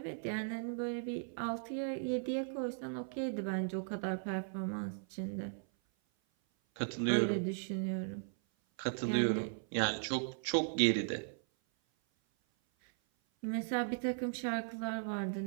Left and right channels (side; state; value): left; silent; 53 dB below the other